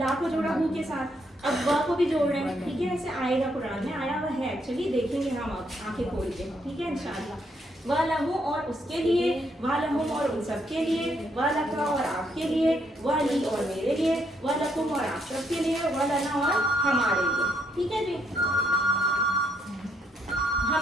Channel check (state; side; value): normal; both; correlation 0.74